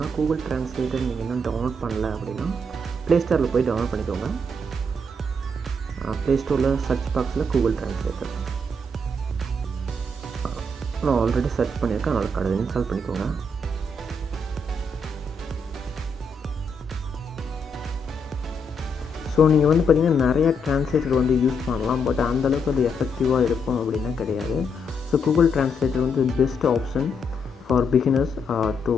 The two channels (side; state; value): both; normal; correlation 0.77